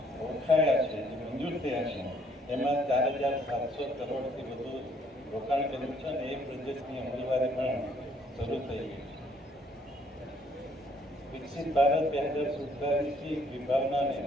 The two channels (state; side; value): normal; both; correlation 0.65